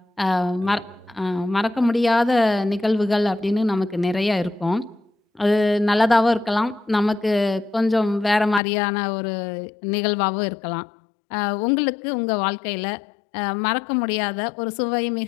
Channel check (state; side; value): drops out; right; at 8.6 s